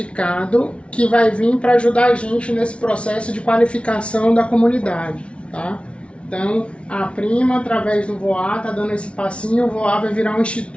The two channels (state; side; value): late; right; 0.060 ms